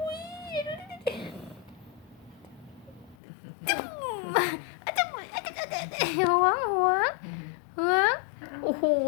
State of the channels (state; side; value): drops out; right; at 3.2 s